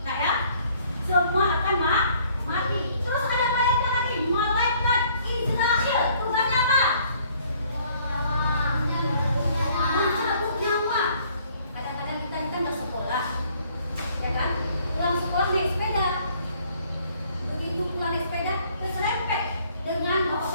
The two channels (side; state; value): both; inverted; correlation -0.61